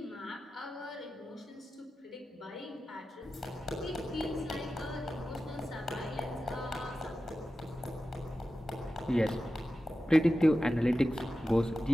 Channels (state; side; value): normal; both; correlation 0.93